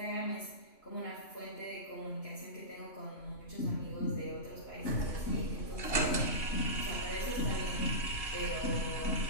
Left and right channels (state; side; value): late; right; 2.8 ms